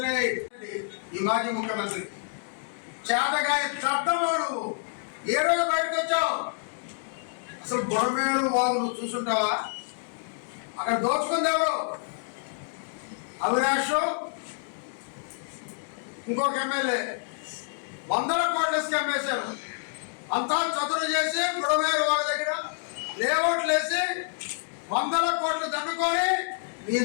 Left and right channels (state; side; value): silent; right; digital silence